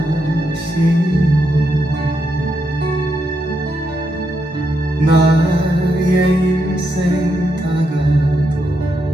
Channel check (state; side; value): normal; both; correlation 0.81